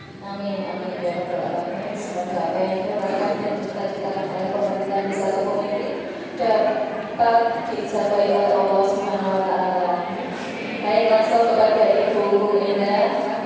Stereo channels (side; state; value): both; identical; correlation 1.00